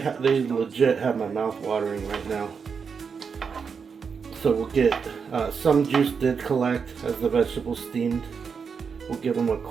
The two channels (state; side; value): quieter; left; 6.0 dB